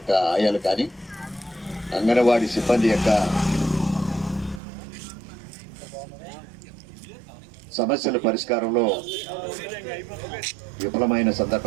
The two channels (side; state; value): left; drops out; at 4.6 s